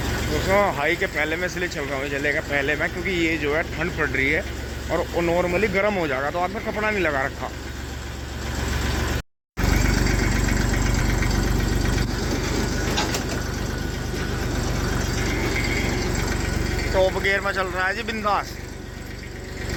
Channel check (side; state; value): both; identical; correlation 1.00